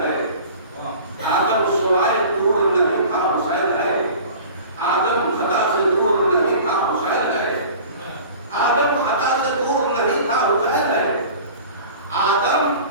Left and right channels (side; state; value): both; inverted; correlation -0.42